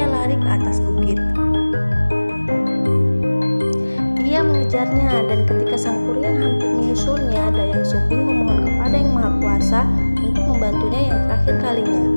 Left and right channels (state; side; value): inverted; both; correlation -1.00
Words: lari ke atas bukit. Ia mengejarnya dan ketika Sang Kuryang hampir menyusulnya, Dayang Sumbing memohon kepada Yang Maha Kuasa untuk membantunya yang terakhir kalinya.